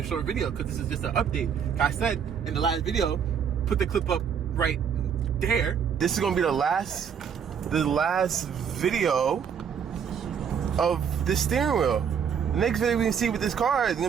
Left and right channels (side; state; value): left; quieter; 7.4 dB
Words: short video because this is just an update. I said in the last video, put the clip up right there. This is gonna be the last video of the steering wheel. The next video we can see with this car is